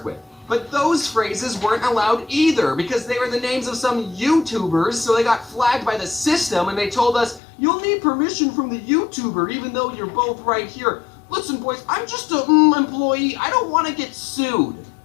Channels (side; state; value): right; drops out; at 7.4 s